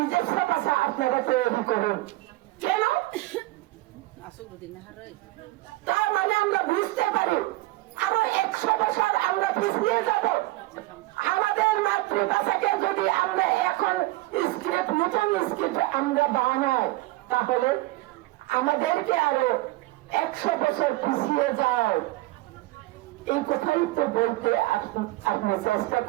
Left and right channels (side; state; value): left; quieter; 19.1 dB